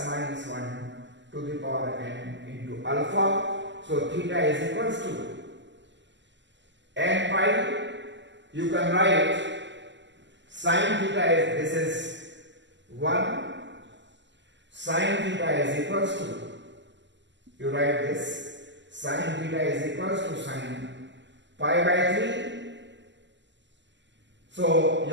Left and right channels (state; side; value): late; left; 0.53 ms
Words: minus 1 to the power n into alpha. So theta is equals to n pi. You can write sin theta is, this is 1. Sin theta is equals to, you write this, sin theta is equals to sin pi by 3. So